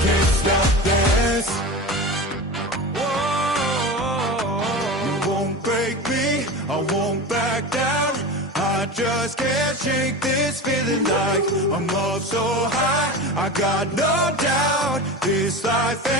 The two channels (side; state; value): both; normal; correlation 0.28